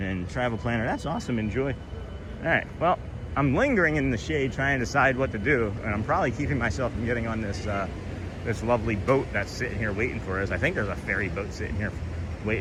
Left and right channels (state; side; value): identical; both; correlation 1.00